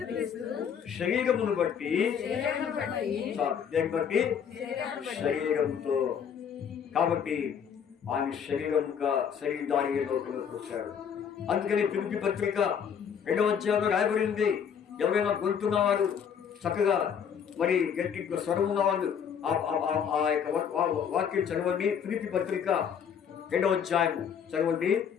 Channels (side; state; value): right; quieter; 7.6 dB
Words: శరీరమును బట్టి శరీరంతో, కాబట్టి ఆయన శరీరధారిగా లోకంలోకి వచ్చాడు. అందుకని ఫిలిప్పీ పత్రిక 2వ అధ్యాయంలో రాయబడింది. ఎవరైనా గొంతున్నవారు చక్కగా మరి గట్టి స్వరం ఉన్నవాళ్ళు ఆ యొక్క వాక్యం చదవండి. ఫిలిప్పీ పత్రిక 2వ అధ్యాయం చదవండి.